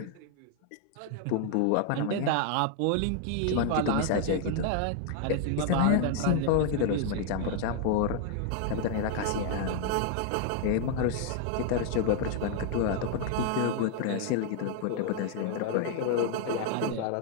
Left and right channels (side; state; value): both; different; correlation 0.00